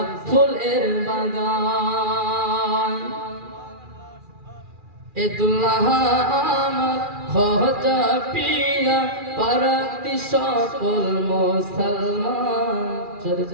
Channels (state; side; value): late; left; 2.4 ms